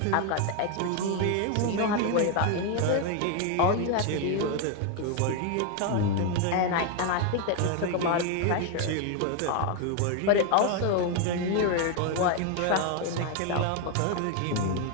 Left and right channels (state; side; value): different; both; correlation 0.01